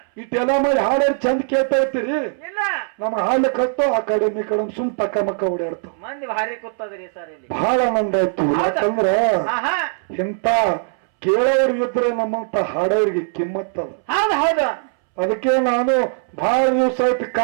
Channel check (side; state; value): left; silent; 66 dB below the other